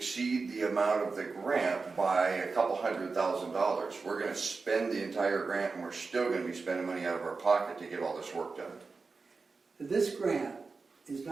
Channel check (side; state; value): left; quieter; 4.3 dB